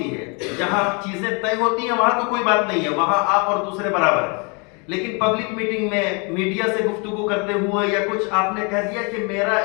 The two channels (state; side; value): quieter; right; 32.4 dB